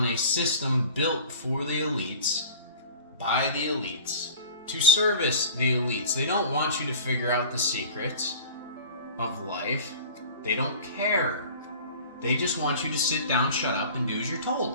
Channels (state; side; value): inverted; both; correlation -0.40